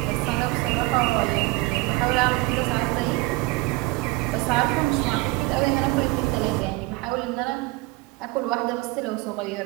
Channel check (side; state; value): left; quieter; 21.9 dB